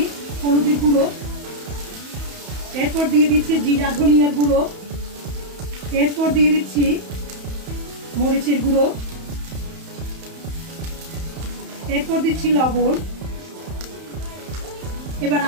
হলুদের গুঁড়ো, এরপর দিয়ে দিচ্ছি জিরা ধনিয়ার গুঁড়ো, এরপর দিয়ে দিচ্ছি মরিচের গুঁড়ো, এরপর দিচ্ছি লবণ। এবার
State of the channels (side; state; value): left; late; 31 ms